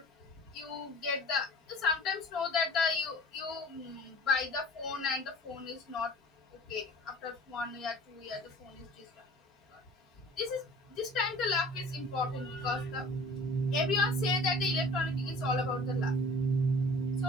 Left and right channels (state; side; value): normal; both; correlation 0.45